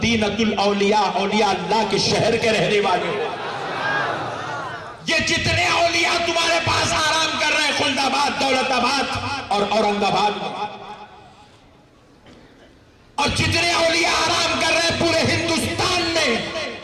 الاولیاء، اولیاء اللہ کے شہر کے رہنے والے ہو۔ یہ جتنے اولیاء تمہارے پاس آرام کر رہے ہیں خلد آباد، دولت آباد اور اورنگ آباد میں، اور جتنے اولیاء آرام کر رہے ہیں پورے ہندوستان میں،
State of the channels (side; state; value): both; identical; correlation 1.00